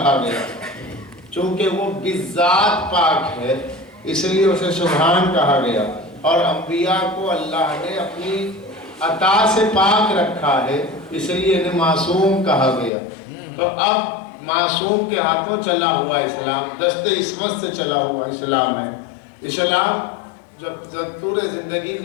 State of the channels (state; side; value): drops out; right; at 12.9 s